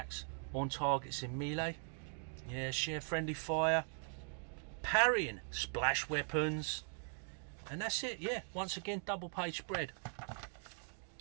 on targets in melee. Yeah, share friendly fire. Parrying, splash weapons. And that's it, yeah. Once again, double page spread.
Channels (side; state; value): left; silent; 51 dB below the other